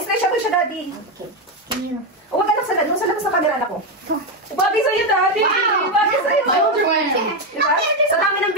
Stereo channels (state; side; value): normal; both; correlation 0.08